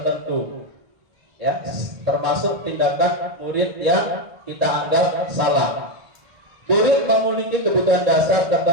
ya, termasuk tindakan murid yang kita anggap salah. Murid memiliki kebutuhan dasar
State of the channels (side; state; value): left; late; 1.8 ms